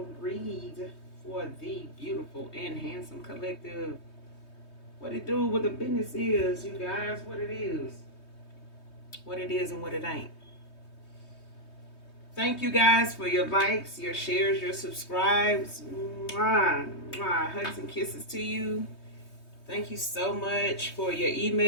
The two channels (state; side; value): late; right; 3.2 ms